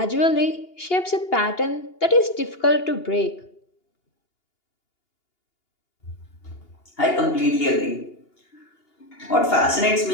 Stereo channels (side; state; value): right; late; 2.8 ms